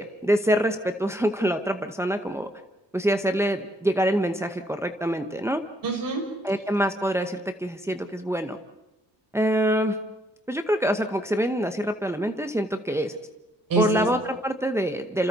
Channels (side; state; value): both; normal; correlation 0.70